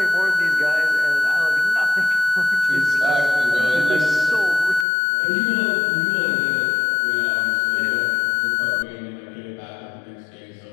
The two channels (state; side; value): drops out; right; at 4.9 s